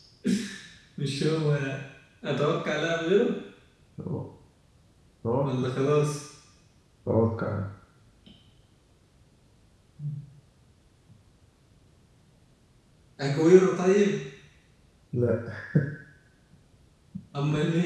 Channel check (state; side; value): identical; both; correlation 1.00